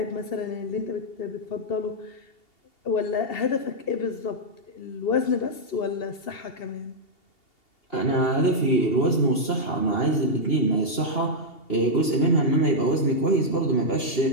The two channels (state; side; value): late; right; 2.8 ms